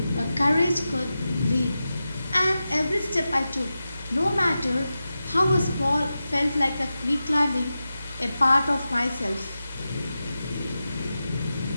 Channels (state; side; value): inverted; both; correlation -0.92